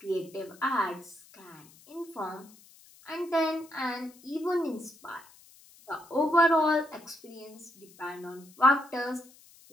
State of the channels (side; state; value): left; noise; hiss, 25 dB below the sound